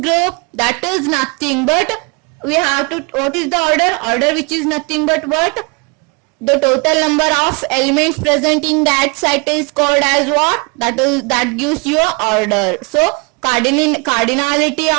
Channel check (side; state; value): left; quieter; 31.5 dB